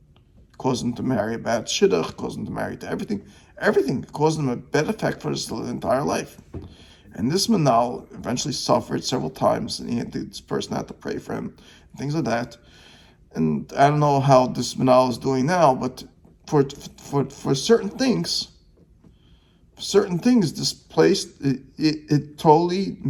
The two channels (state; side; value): identical; both; correlation 1.00